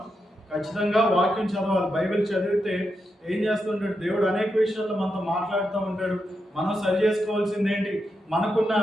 ఖచ్చితంగా వాక్యం చదవాలి. బైబిల్ చదివితే ఏం చేస్తుంటాడు, దేవుడు అనేక విషయాల్లో మనతో మాట్లాడుతూ ఉంటాడు. మనం సరి చేసుకోవాల్సింది ఏంటి, మనకున్న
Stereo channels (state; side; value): normal; both; correlation 0.85